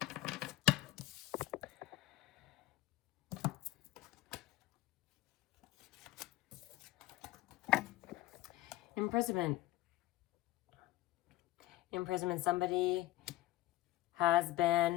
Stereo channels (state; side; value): quieter; right; 16.5 dB